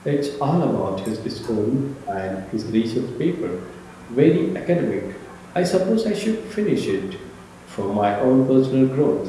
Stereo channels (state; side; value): identical; both; correlation 1.00